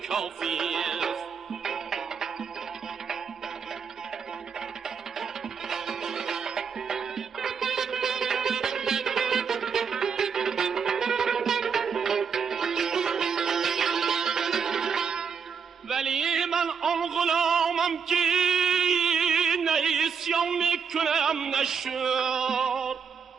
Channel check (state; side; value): quieter; left; 6.3 dB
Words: کافی است. ولی من آن غلامم که نه عصیان میکنم نه شکر،